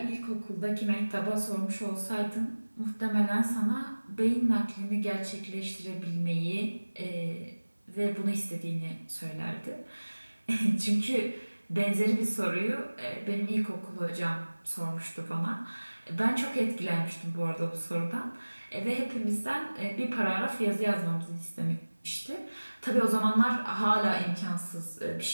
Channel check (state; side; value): inverted; both; correlation -1.00